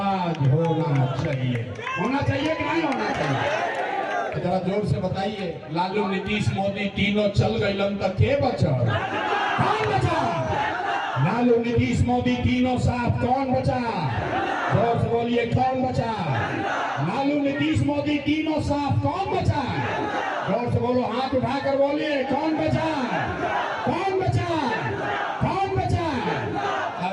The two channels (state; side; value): identical; both; correlation 1.00